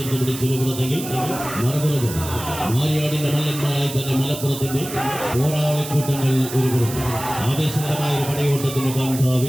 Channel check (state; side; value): noise; right; hiss, 10 dB below the sound